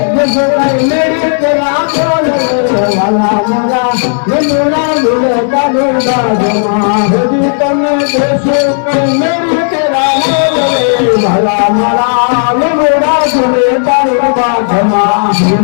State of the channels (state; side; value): silent; right; digital silence